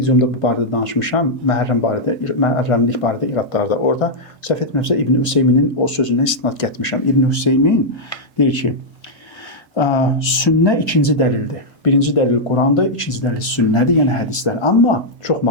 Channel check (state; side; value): late; left; 1.5 ms